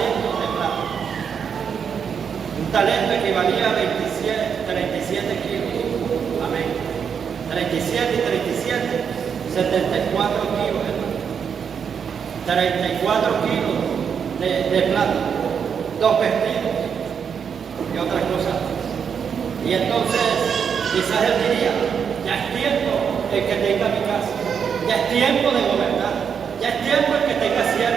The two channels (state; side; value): quieter; left; 7.1 dB